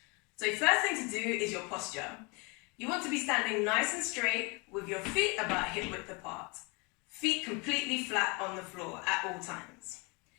So first thing to do is your posture. You want to be standing nice and straight with your feet about hip width apart. Feet completely flat on the floor at all times.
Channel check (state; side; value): quieter; right; 29.7 dB